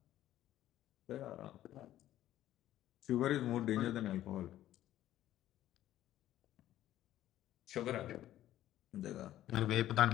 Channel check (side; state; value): right; quieter; 13.2 dB